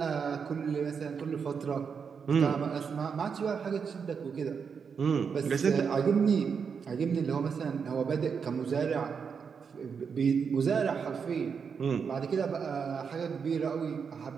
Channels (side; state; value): left; quieter; 6.2 dB